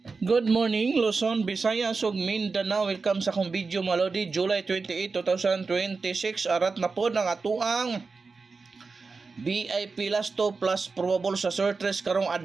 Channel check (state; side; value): quieter; left; 4.4 dB